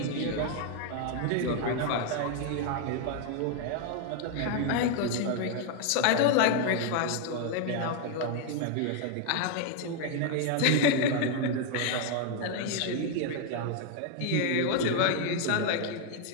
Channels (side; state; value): both; different; correlation 0.00